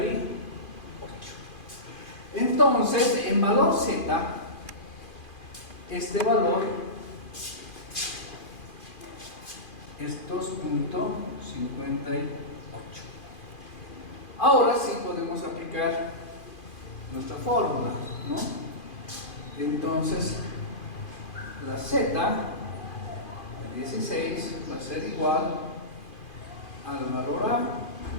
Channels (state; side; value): late; right; 2.5 ms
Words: Entonces, en valor z, este valor es 2.58. Ahora sí podemos aplicar nuestra fórmula, ¿no? Entonces, la z de 16 va a ser igual al valor a